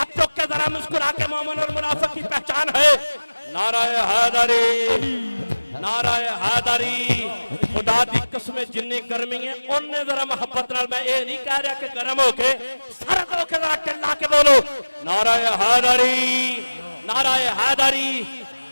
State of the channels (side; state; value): both; inverted; correlation -1.00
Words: चौक के जरा मुस्कुरा के मोमिन और मुनाफिक की पहचान है। नाराए हैदरी, नाराए हैदरी, खुदा दी कसम जिन्नी गर्मी है उन्ने जरा मोहब्बत नाल, मैं ये नहीं कह रहा कि गर्म होके सरद होके जरा चिल्ला के बोलो नाराए हैदरी, नाराए हैदरी।